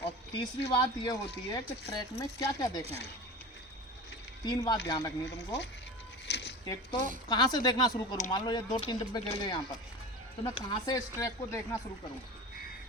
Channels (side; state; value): both; normal; correlation 0.31